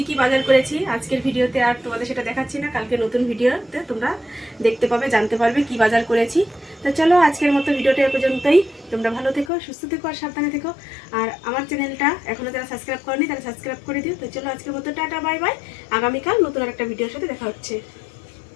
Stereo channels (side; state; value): right; drops out; at 9.5 s